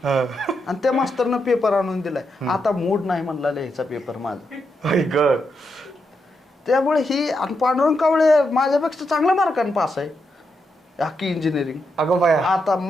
आणि त्या मास्तरनं पेपर आणून दिलाय. आता मूड नाही म्हणला लिहायचा पेपर माझा. त्यामुळे ही पांडुरंग कावळे माझ्यापेक्षा चांगल्या मार्काने पास आहे अख्खी इंजिनिअरिंग. अगं बाया, आता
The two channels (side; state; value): both; normal; correlation 0.83